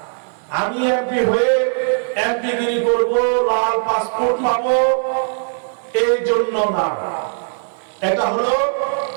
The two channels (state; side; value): silent; left; digital silence